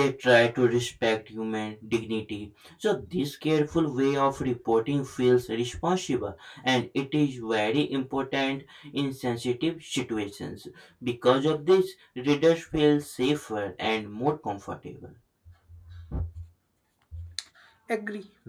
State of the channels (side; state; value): both; identical; correlation 1.00